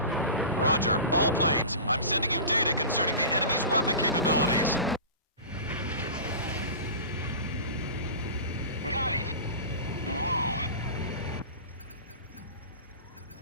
Roger. All planes. I'm sending you data concerning the enemy's weapon capabilities. Got it. Whoa.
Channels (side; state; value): both; inverted; correlation -0.34